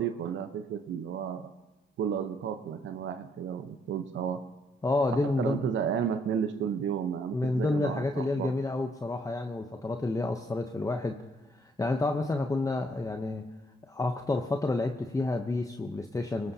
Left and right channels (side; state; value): both; normal; correlation 0.69